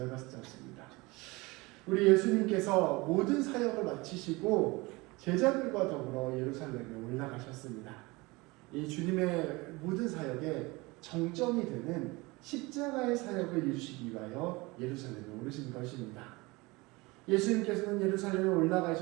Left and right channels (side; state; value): left; quieter; 23.6 dB